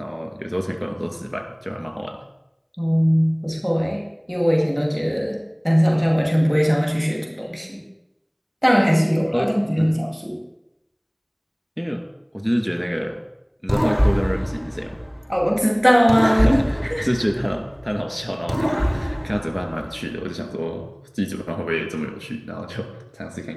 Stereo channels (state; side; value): identical; both; correlation 1.00